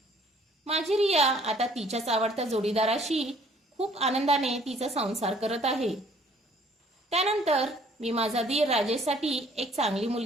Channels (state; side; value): normal; both; correlation 0.58